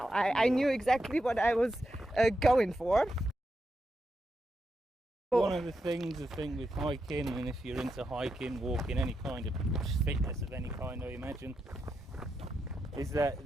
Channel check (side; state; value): both; normal; correlation 0.86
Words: I knew exactly what I was going for. One of the things I think with hiking, and if you're into hiking, walking, any kind of fitness of any kind, I imagine, is that